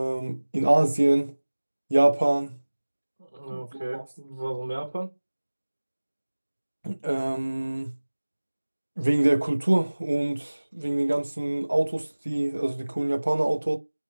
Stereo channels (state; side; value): inverted; both; correlation -1.00